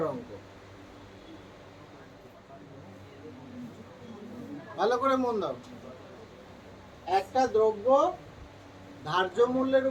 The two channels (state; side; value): identical; both; correlation 1.00